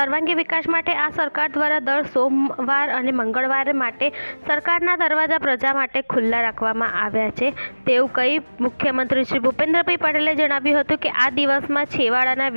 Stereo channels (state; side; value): inverted; both; correlation -1.00